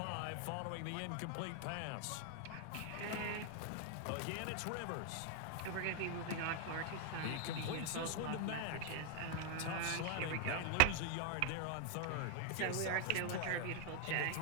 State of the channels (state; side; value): different; both; correlation 0.00